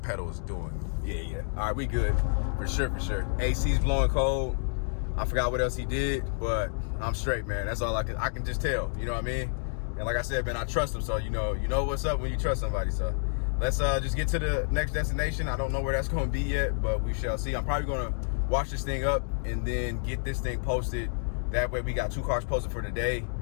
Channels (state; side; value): silent; right; digital silence